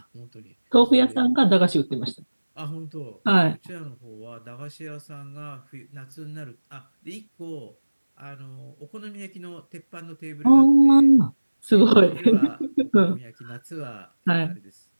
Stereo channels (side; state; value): both; inverted; correlation -1.00